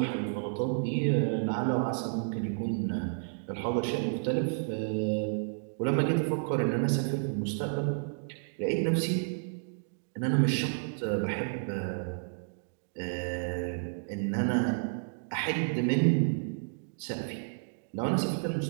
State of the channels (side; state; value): left; silent; digital silence